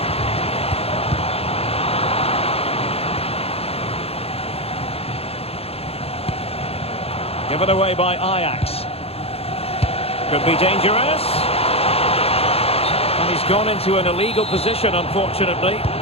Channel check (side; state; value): right; late; 0.29 ms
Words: Given away by Ajax. Could be dangerous. And he's gone into an illegal position, unfortunately.